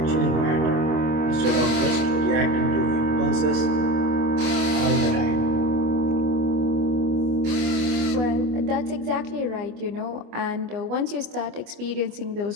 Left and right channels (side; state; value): left; late; 25 ms